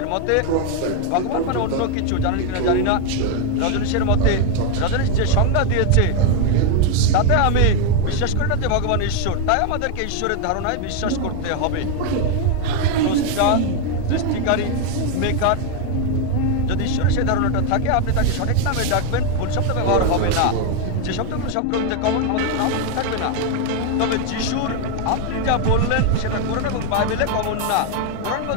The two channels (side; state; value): both; different; correlation 0.01